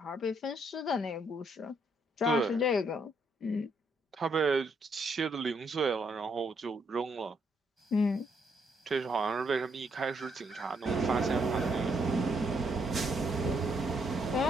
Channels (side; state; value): both; normal; correlation 0.73